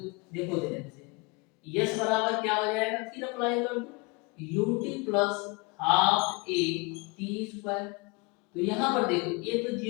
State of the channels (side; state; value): right; quieter; 28.2 dB